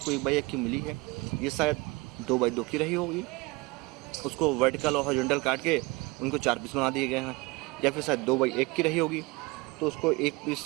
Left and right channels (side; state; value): left; quieter; 24.5 dB